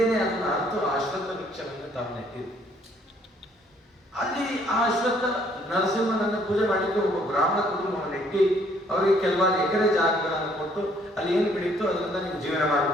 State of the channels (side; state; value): both; normal; correlation 0.64